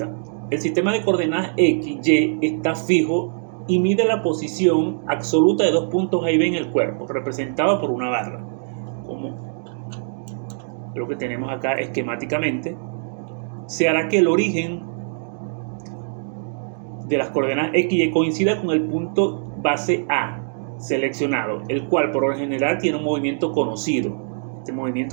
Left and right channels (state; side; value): silent; left; digital silence